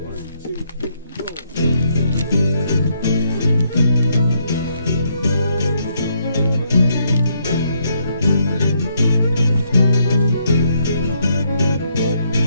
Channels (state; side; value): inverted; both; correlation -0.73